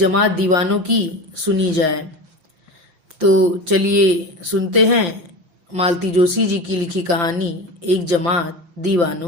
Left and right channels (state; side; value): late; left; 5.8 ms